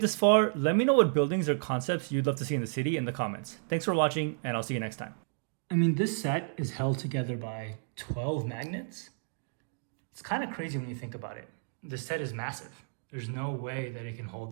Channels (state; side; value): silent; left; digital silence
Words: this far, let me know what buildings or concepts you'd love to see in the city in the comments. Thanks for watching, and I'll see you next time. I mean, this set is held together by 12 magnets. It's kind of crazy when you think about it. The set is massive. There's no way that it can